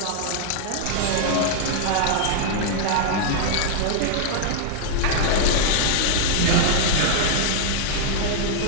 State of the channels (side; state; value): both; different; correlation -0.01